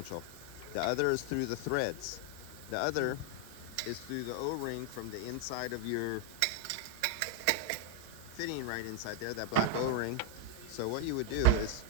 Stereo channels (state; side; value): different; both; correlation 0.00